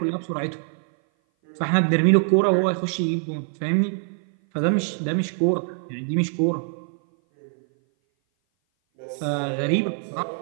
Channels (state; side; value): silent; left; 58 dB below the other